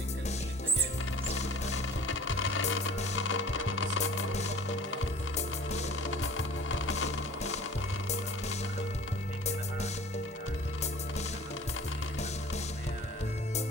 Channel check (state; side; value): normal; both; correlation 0.46